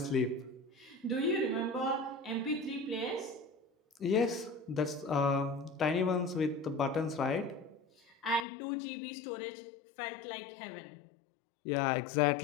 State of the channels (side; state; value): right; drops out; at 8.5 s